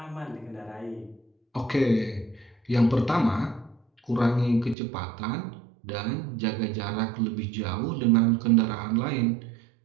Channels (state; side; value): drops out; left; at 4.8 s